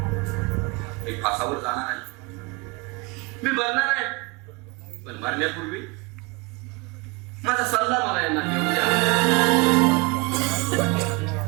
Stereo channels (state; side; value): quieter; left; 26.9 dB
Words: मी फासावर जाणार आहे. मी मरणार आहे. पण मरण्यापूर्वी माझा सल्ला मला यांना घेऊन द्या.